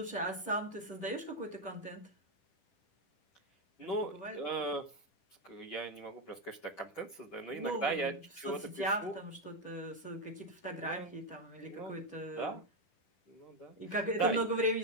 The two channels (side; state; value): right; late; 10 ms